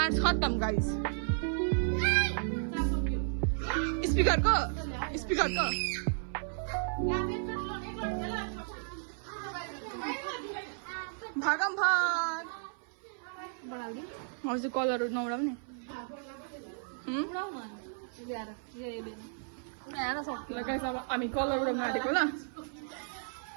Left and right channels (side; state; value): left; silent; 55 dB below the other